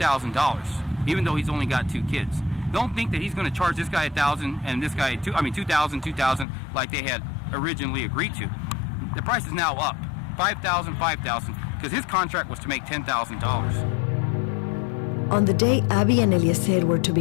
even though he's only got 2 kids. Don't think that he's going to charge this guy $1,000 and this guy $2,000 like they had originally agreed to. The price is now up, $5,000, because his contract was to make $10,000. On the day Abi and Eliezer were to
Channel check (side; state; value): right; drops out; at 6.5 s